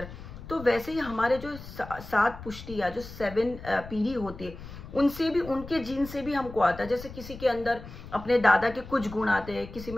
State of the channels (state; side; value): noise; left; rumble, 14 dB below the sound